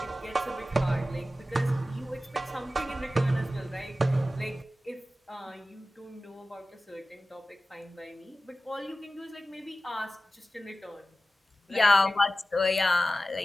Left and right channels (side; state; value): both; normal; correlation 0.95